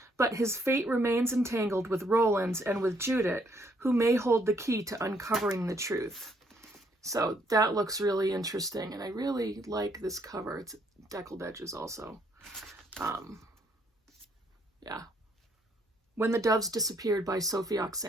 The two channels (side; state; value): both; normal; correlation 0.69